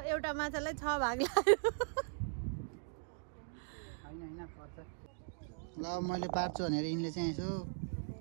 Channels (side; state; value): left; silent; digital silence